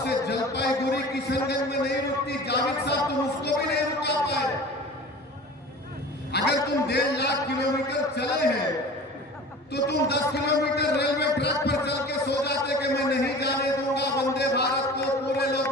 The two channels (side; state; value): both; normal; correlation 0.39